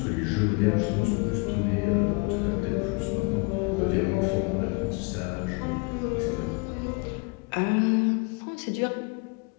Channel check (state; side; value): quieter; right; 31.5 dB